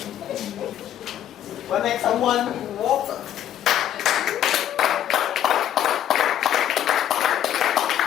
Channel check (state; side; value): quieter; right; 11.0 dB